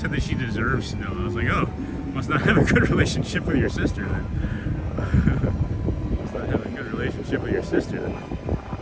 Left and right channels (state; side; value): identical; both; correlation 1.00